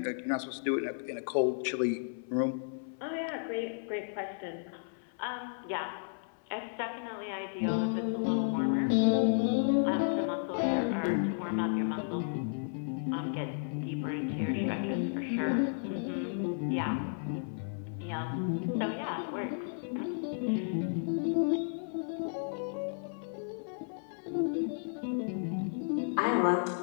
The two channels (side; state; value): right; silent; 56 dB below the other